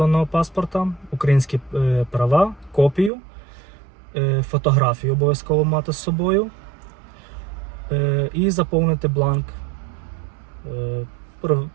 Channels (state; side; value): drops out; left; at 3.1 s